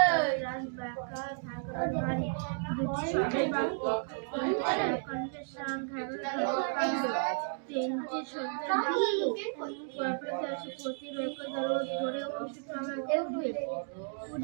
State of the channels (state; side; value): silent; left; digital silence